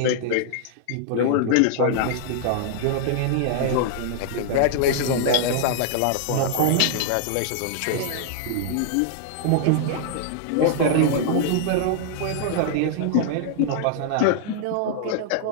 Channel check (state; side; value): different; both; correlation -0.01